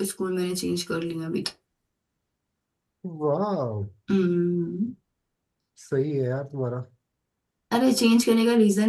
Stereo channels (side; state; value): both; identical; correlation 1.00